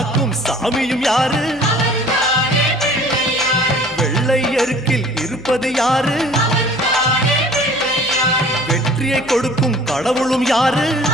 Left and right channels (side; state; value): left; noise; hum, 24 dB below the sound